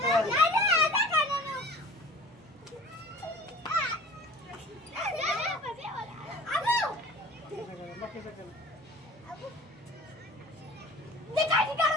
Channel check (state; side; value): normal; both; correlation 0.43